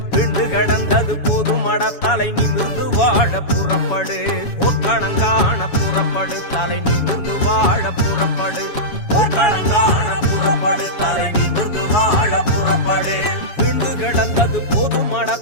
விண்டு கிடந்தது போதுமட தலை நிமிர்ந்து வாழ புறப்படு போர்க்களங்கான புறப்படு தலை நிமிர்ந்து வாழ புறப்படு போர்க்களங்கான புறப்படு தலை நிமிர்ந்து வாழ புறப்படு விண்டு கிடந்தது போதுமட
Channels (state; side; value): late; right; 7.1 ms